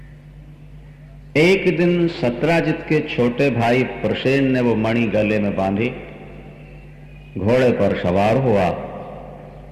एक दिन सत्राजित के छोटे भाई प्रसेन ने वो मणि गले में बांधी, घोड़े पर सवार हुआ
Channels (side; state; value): both; identical; correlation 1.00